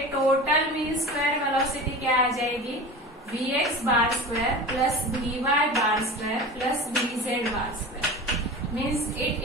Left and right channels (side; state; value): both; normal; correlation 0.33